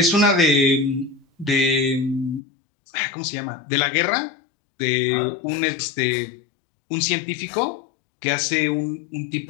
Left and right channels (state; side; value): drops out; right; at 2.4 s